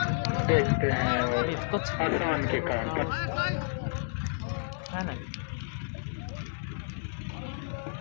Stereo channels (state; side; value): silent; right; digital silence